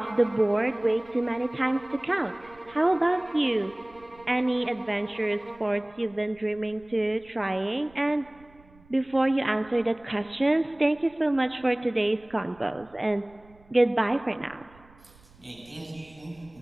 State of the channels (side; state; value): right; noise; rumble, 27 dB below the sound